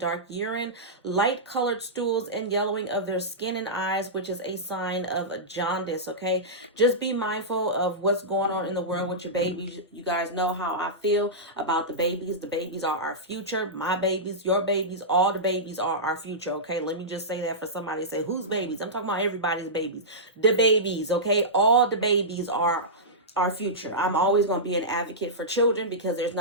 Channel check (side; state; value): both; normal; correlation -0.14